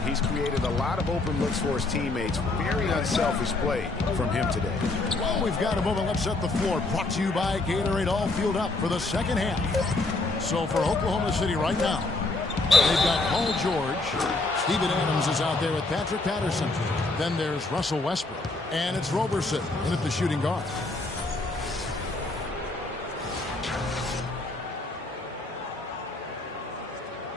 He's created a lot of open looks for his teammates. Very unselfish play from him today. Well, we've got a moment. Let's set the floor. Brought to you by Gatorade. All fueled up for the second half. So for Oklahoma City right now, they've got Paul George. Steven Adams is out there with Patrick Patterson. Then there's Russell Westbrook. And it's Roberson in at the shooting guard.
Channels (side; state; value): right; quieter; 3.2 dB